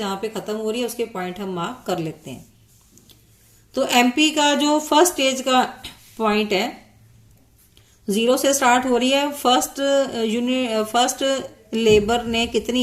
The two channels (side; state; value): both; identical; correlation 1.00